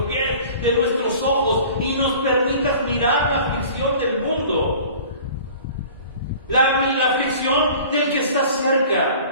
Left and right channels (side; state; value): both; inverted; correlation -0.45